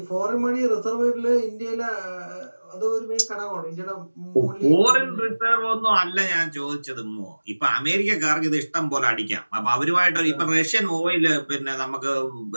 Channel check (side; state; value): both; inverted; correlation -1.00